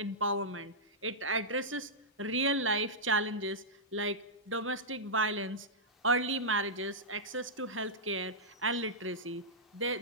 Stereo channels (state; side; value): normal; both; correlation -0.11